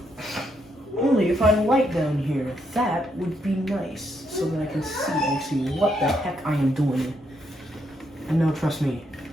Only if I had a light down here, that would be nice, so that I can see actually what the heck I am doing. And no, trust me,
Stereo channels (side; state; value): both; normal; correlation 0.77